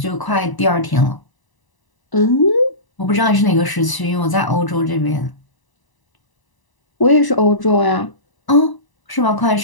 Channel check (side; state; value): right; late; 1.0 ms